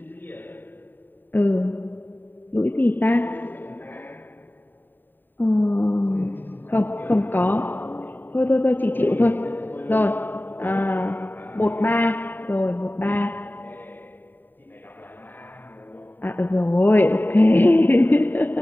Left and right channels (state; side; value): late; right; 0.092 ms